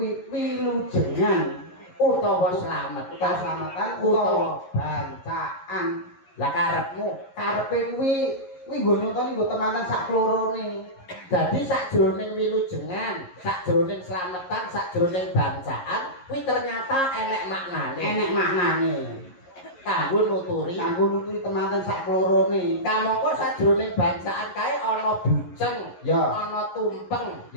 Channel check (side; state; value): right; late; 11 ms